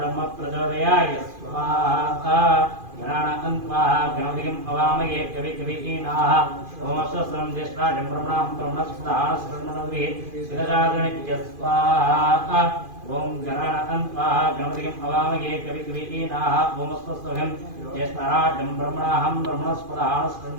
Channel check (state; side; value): late; left; 2.5 ms